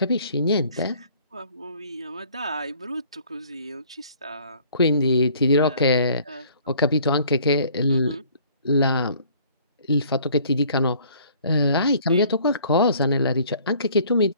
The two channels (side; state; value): both; inverted; correlation -0.55